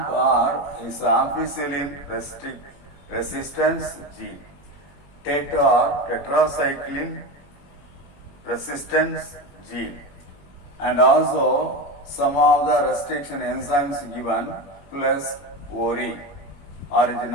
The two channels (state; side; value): late; right; 21 ms